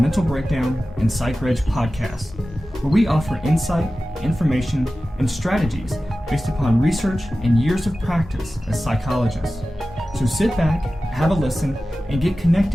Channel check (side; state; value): both; normal; correlation 0.95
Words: Breakdown and Psychreg podcast, where we offer insight, information, and strategies based upon research and years of practice as psychologists. So sit back, have a listen, and get